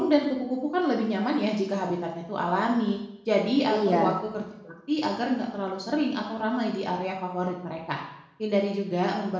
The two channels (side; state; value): both; identical; correlation 1.00